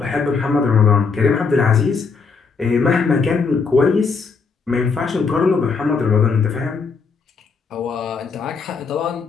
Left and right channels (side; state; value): right; quieter; 5.0 dB